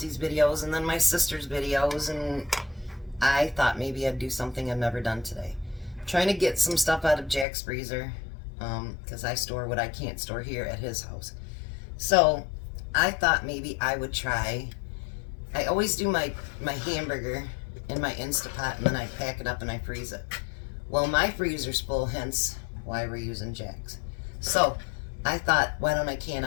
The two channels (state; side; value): drops out; right; at 7.5 s